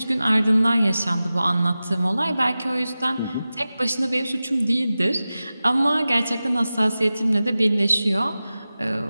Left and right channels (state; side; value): inverted; both; correlation -0.95